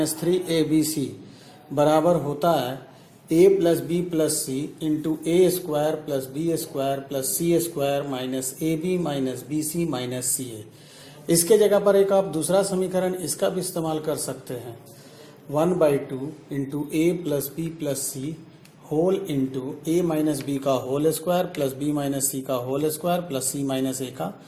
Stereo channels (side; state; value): both; identical; correlation 1.00